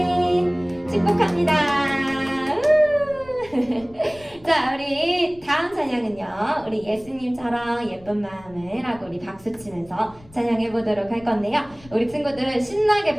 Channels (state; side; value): noise; left; rumble, 24 dB below the sound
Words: 축복합니다. 자, 우리 다음 찬양은요, 우리 예수님처럼 예쁜 마음을 하고 우리 박수 치면서 찬양해 보도록 할 건데요. 우리 친구들 신나게